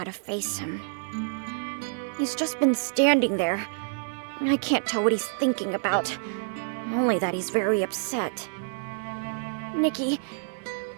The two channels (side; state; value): left; silent; 60 dB below the other